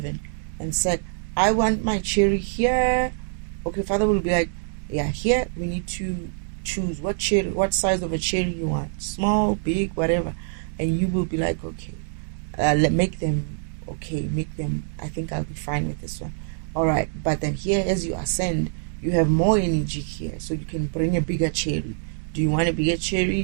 and said, I want my cherry here. Okay, Father will be like, yeah, here we need to choose what size of a cherry you want. Small, big, whatever. And you will be like, okay, make them, I think I'll be fine with this one. All right, but then here, as you ascend, you have more energy here, so you can bring a bigger cherry. Do you want a bigger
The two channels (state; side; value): silent; left; 62 dB below the other